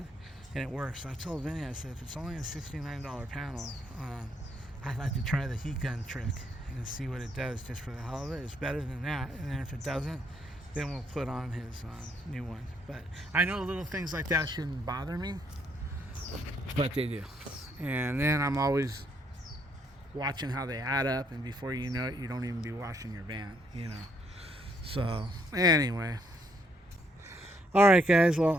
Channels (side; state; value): both; normal; correlation 0.71